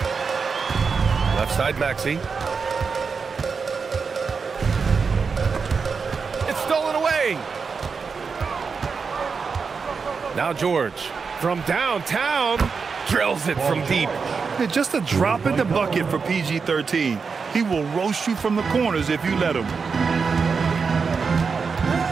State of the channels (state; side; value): quieter; left; 5.3 dB